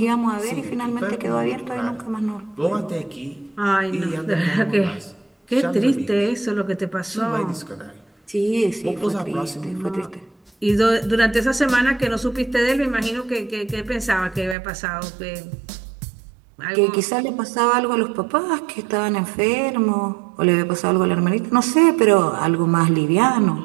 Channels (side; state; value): left; drops out; at 14.6 s